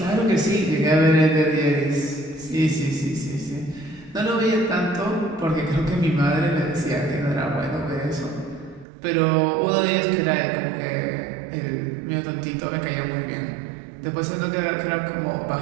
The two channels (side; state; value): left; drops out; at 8.8 s